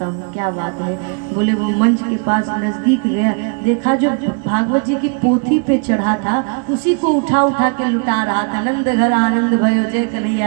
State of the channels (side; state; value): left; quieter; 39.4 dB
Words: हूँ क्या बात है। बोले वो मंच के पास नजदीक गया, देखा जो भागवत जी की पोथी पे चढ़ा था उसी को उठा उठा के लुटा रहा था। नंद घर आनंद भयो जय